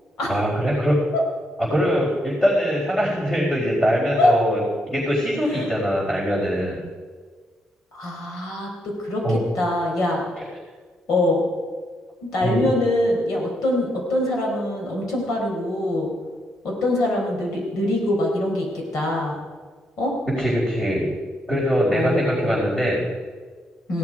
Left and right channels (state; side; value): normal; both; correlation 0.78